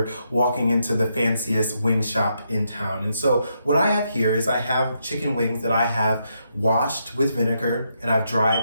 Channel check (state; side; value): inverted; both; correlation -0.79